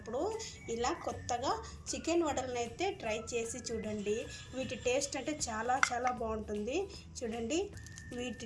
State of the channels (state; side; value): identical; both; correlation 1.00